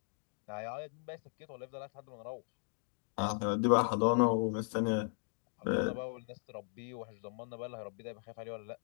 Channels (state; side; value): silent; right; digital silence